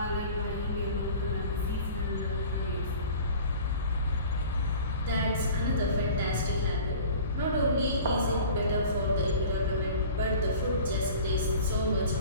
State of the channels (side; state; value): both; inverted; correlation -0.43